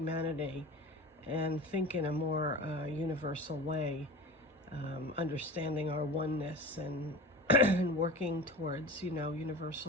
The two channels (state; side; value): normal; both; correlation 0.33